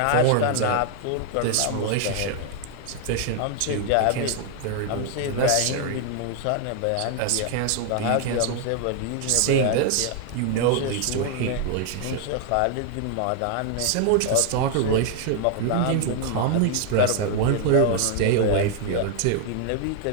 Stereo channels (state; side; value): different; both; correlation 0.00